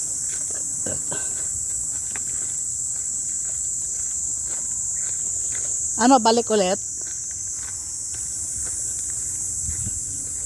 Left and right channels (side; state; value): both; identical; correlation 1.00